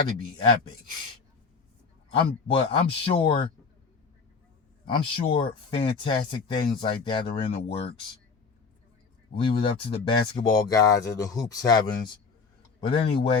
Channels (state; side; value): quieter; right; 4.9 dB